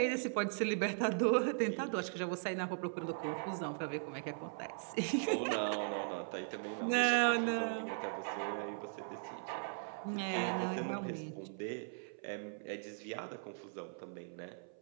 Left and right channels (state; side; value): silent; left; 52 dB below the other